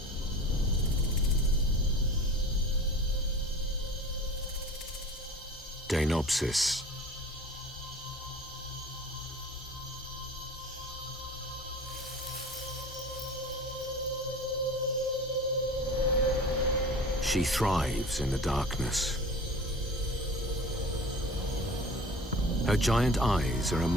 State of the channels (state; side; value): normal; both; correlation 0.40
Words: Deinopsis. She thrives in the darkness. Her giant eyes are